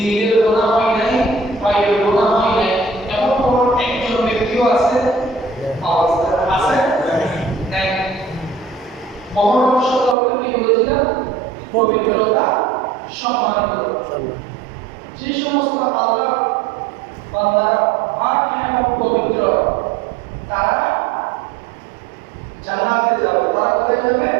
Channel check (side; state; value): left; drops out; at 10.2 s